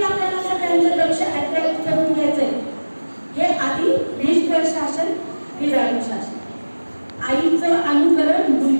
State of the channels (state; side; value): inverted; both; correlation -1.00